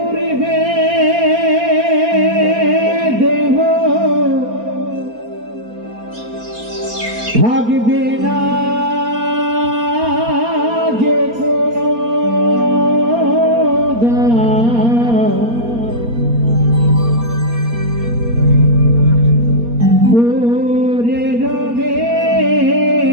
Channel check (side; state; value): left; late; 4.3 ms